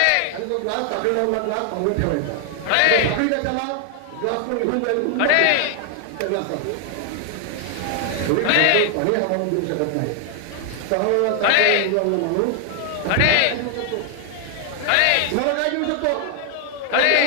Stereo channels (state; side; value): different; both; correlation 0.00